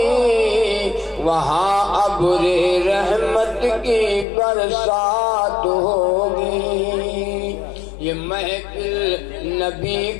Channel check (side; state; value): right; drops out; at 4.2 s